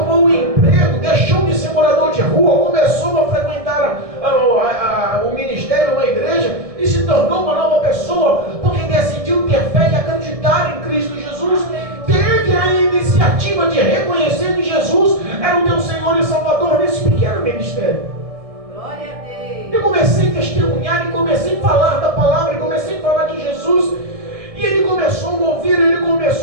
um emprego, deixou de ser morador de rua, começou a frequentar o ministério, uma igreja, tornou uma nova pessoa, porque decidiu ter fé e acreditar em Cristo Jesus. Teve a iniciativa de reconhecer que Jesus era o teu Senhor e Salvador nesse pequeno ministério. Glória a Deus. Eu comecei a testemunhar, e comecei a falar da palavra, e comecei a falar de Jesus. E ele começou a me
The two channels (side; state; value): left; late; 1.6 ms